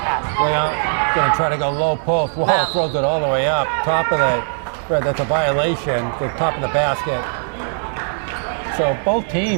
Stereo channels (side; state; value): left; silent; 66 dB below the other